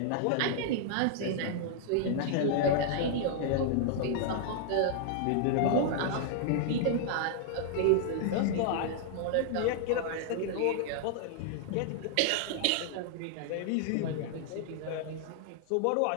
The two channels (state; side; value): different; both; correlation -0.01